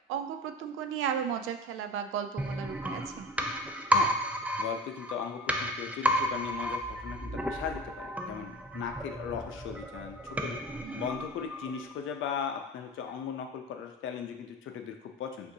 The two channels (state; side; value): normal; both; correlation 0.38